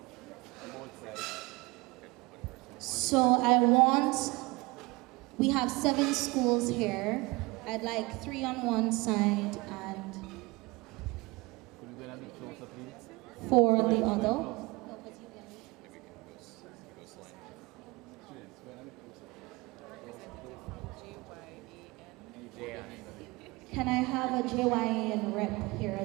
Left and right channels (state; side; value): quieter; left; 24.4 dB